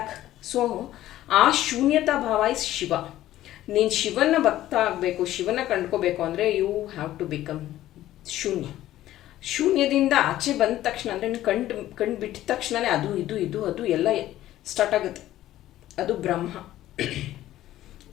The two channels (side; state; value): right; quieter; 14.0 dB